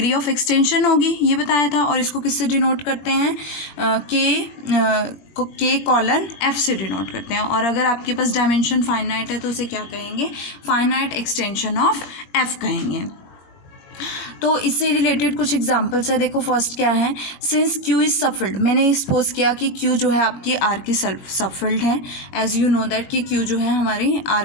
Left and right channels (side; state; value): right; late; 22 ms